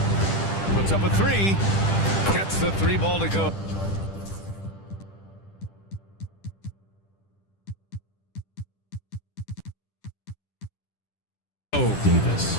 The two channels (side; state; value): right; late; 10 ms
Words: Puts up a 3. Gets the 3 ball to go.